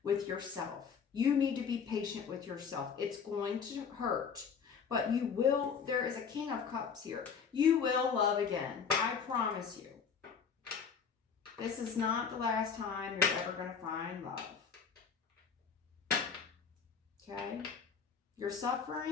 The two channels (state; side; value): quieter; right; 6.4 dB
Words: with yourself. You need to be patient with yourself. It's going to hurt, but you will. There is a King of Cups here. You will love again. I promise you. This is not the last time you're ever going to find love. Okay? You're